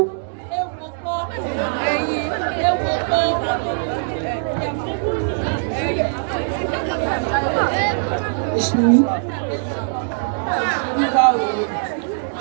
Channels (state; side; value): silent; left; digital silence